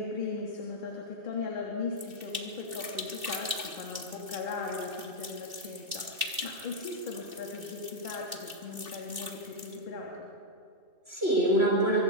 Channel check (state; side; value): late; left; 2.6 ms